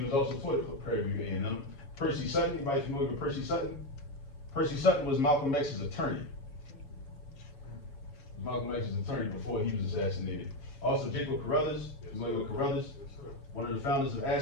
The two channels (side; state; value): right; late; 7.3 ms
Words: also taught at Prairie View A&M. Percy Sutton, anybody familiar with Percy Sutton? Percy Sutton was Malcolm X's attorney. Malcolm X's attorney before he was assassinated. Also, Jacob Carruthers, familiar with Carruthers? One of the founders of